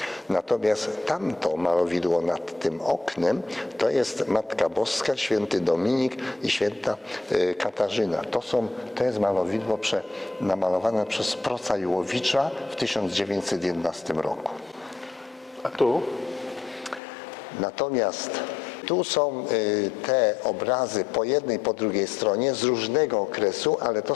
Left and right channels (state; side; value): drops out; right; at 17.0 s